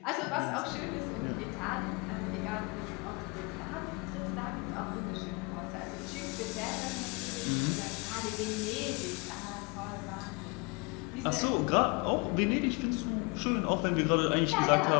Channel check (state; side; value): quieter; right; 29.1 dB